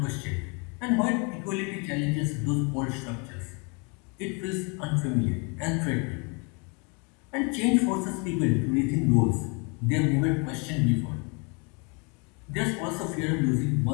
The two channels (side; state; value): right; quieter; 33.3 dB